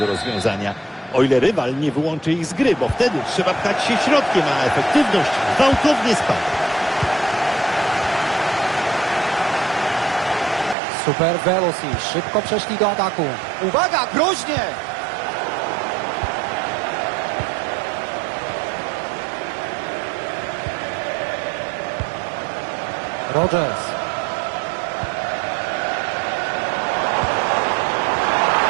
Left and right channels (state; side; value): drops out; left; at 10.8 s